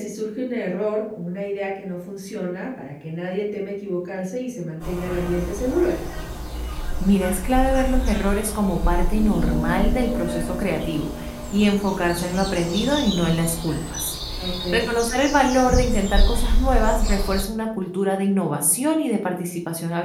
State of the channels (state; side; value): identical; both; correlation 1.00